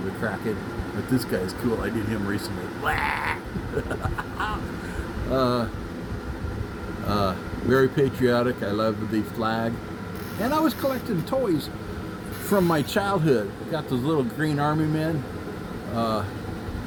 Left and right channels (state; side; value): identical; both; correlation 1.00